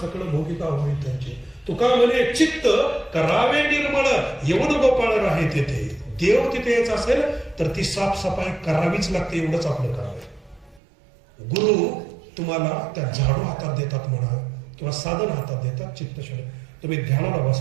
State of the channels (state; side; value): drops out; left; at 10.8 s